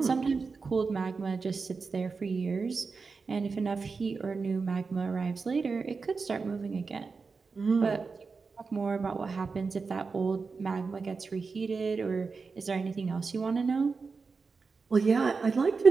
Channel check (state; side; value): quieter; left; 4.7 dB